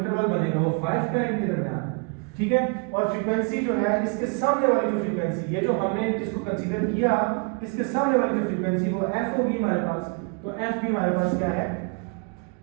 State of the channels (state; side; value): quieter; left; 33.6 dB